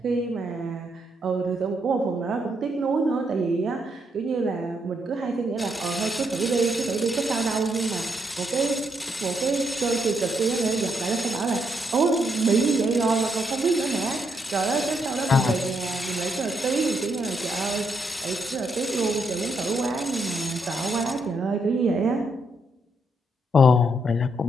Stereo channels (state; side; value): normal; both; correlation 0.77